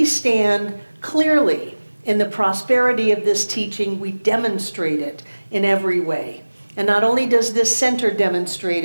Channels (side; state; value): both; inverted; correlation -1.00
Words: stand clearly in the prosperity of this teaching. We demonstrate it in every way. And not only does this center demonstrate